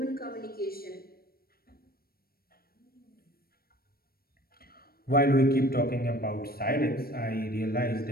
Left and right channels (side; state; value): right; late; 0.44 ms